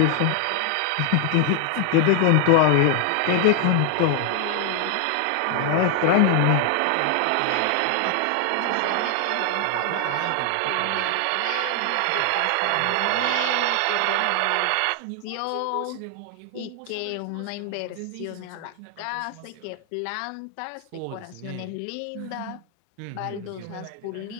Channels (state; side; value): different; both; correlation 0.00